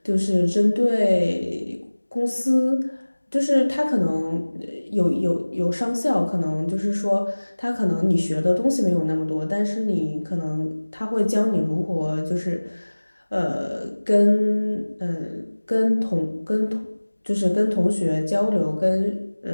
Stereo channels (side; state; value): both; inverted; correlation -1.00